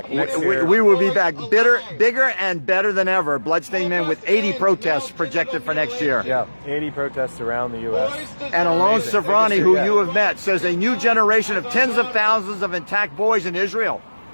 next year. We will be back bigger and better than ever. Bloodstained Men with 80 protests projected for next year. Yeah, 80 protests around the U.S. And Alon Amazing. Savrani, Biggest who year you yet. have met, says a new generation of tens of thousands of intact boys in Israel.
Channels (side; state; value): both; inverted; correlation -1.00